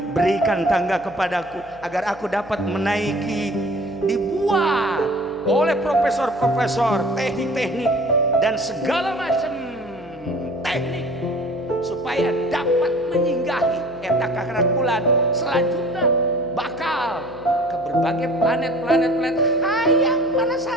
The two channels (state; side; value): noise; left; hum, 24 dB below the sound